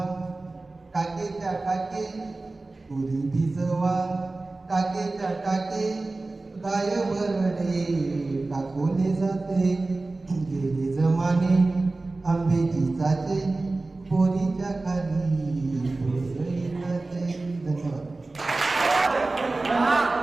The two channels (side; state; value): left; quieter; 3.2 dB